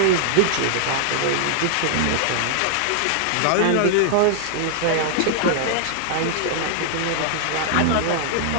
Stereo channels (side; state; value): both; different; correlation -0.01